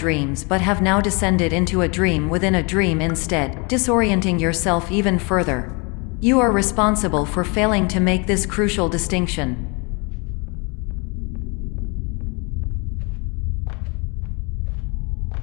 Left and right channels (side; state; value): right; quieter; 31.2 dB